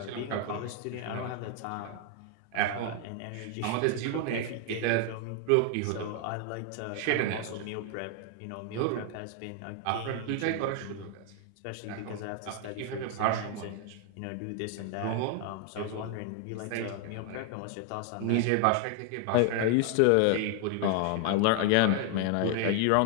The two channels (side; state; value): both; different; correlation 0.00